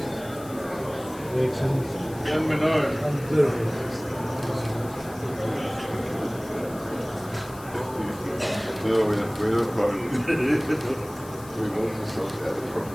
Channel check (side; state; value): left; noise; hiss, 19 dB below the sound